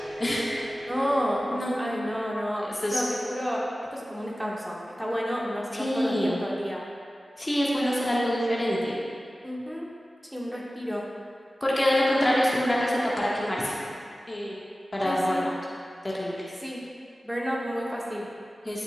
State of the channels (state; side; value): normal; both; correlation 0.96